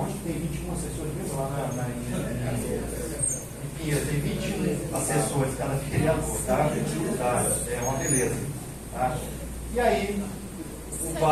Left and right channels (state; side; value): identical; both; correlation 1.00